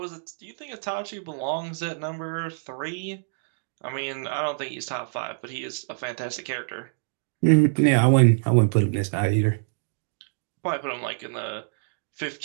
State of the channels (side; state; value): left; silent; digital silence